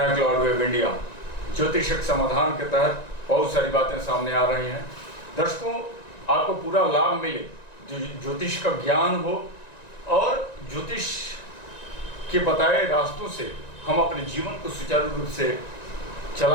हैं क्लाउड वेव इंडिया। ज्योतिषक समाधान के तहत बहुत सारी बातें सामने आ रही हैं। दर्शकों, आपको पूरा लाभ मिले, ज्योतिष का ज्ञान हो और ज्योतिष के बताए रास्तों से हम अपने जीवन को सुचारू रूप से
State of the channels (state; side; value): late; right; 1.9 ms